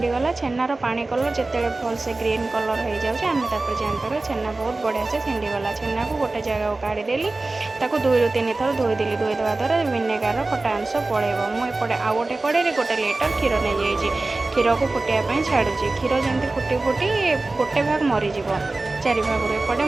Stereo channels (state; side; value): quieter; left; 3.2 dB